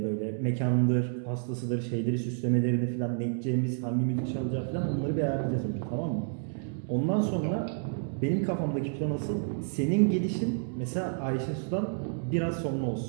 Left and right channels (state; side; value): silent; left; digital silence